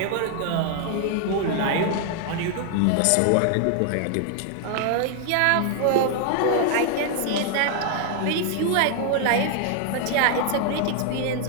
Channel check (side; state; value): both; different; correlation 0.00